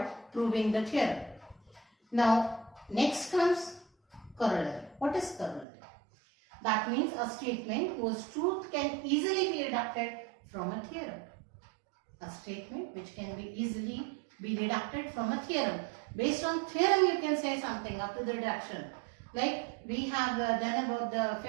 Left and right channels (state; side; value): drops out; left; at 5.7 s